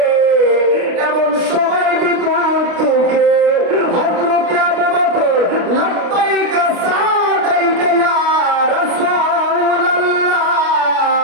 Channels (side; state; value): left; late; 29 ms